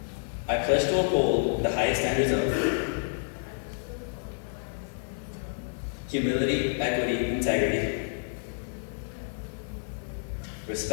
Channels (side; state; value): right; silent; 57 dB below the other